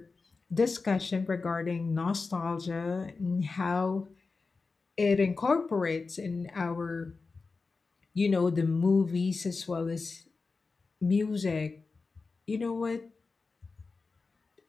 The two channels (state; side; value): quieter; right; 4.2 dB